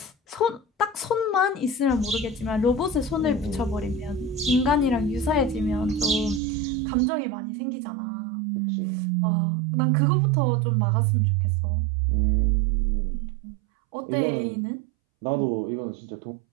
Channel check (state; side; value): drops out; left; at 6.4 s